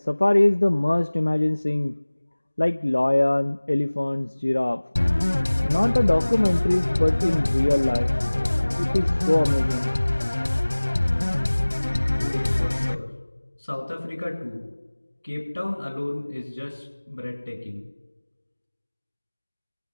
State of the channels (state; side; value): inverted; both; correlation -1.00